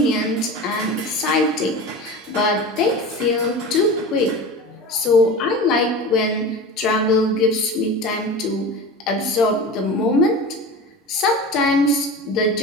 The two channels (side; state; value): both; normal; correlation 0.31